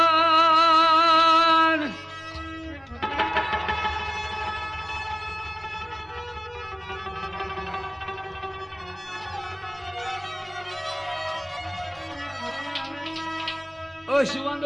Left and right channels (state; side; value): identical; both; correlation 1.00